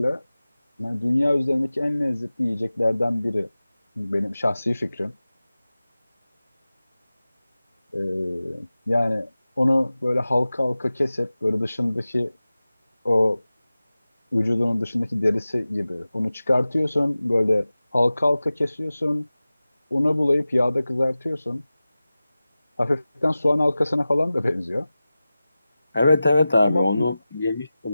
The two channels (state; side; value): inverted; both; correlation -0.96